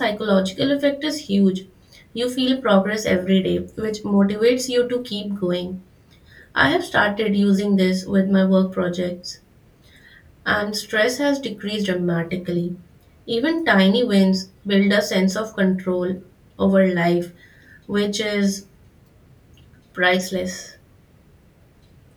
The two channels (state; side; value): identical; both; correlation 1.00